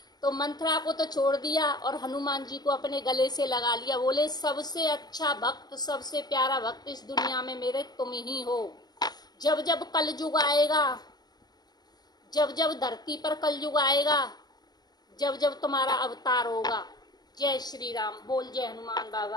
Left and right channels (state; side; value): late; right; 0.20 ms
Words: तो मंथरा को तो छोड़ दिया और हनुमान जी को अपने गले से लगा लिया। बोले सबसे अच्छा भक्त, सबसे प्यारा भक्त इस दुनिया में मेरे तुम ही हो। जब जब कलयुग आएगा, जब जब धरती पर कलयुग आएगा, जब जब तुम्हारा अवतार होगा, जय श्री राम। बोल जय हनुमान